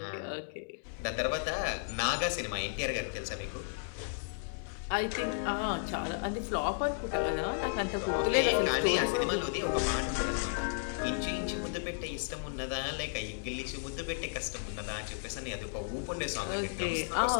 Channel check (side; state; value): right; silent; digital silence